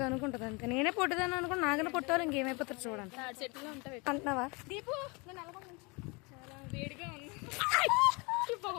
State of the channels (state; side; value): quieter; right; 28.8 dB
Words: అనుకుంటుంది అంతే. నేనే పొట్టిదాన్ని అనుకుంటే నాకన్నా పొట్టాలి ఇంకేమైపోతారు చూడండి. చెట్లో ఉంటాయి అంటున్నావా? దీపు నేను చాలా వేడిగా ఉంది.